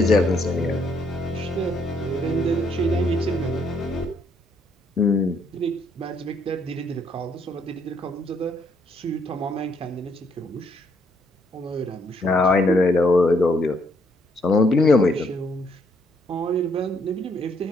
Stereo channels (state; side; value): normal; both; correlation 0.70